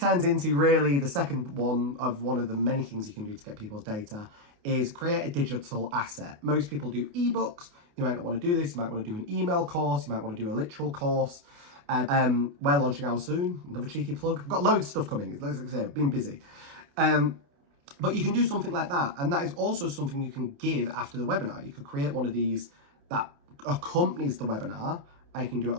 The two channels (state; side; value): late; left; 29 ms